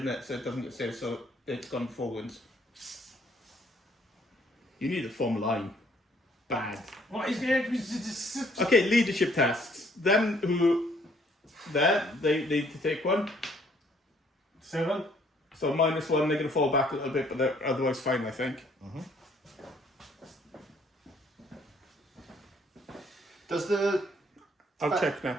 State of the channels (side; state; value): both; normal; correlation 0.63